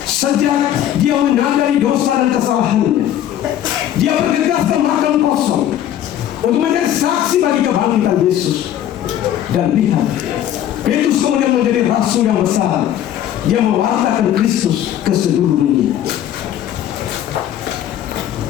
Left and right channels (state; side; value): quieter; right; 11.3 dB